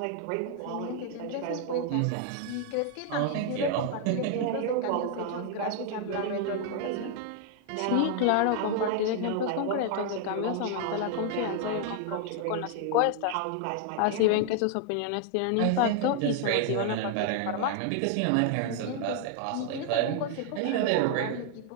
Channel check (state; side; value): different; both; correlation 0.00